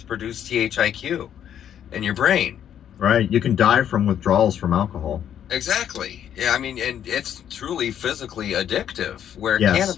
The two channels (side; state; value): right; quieter; 9.7 dB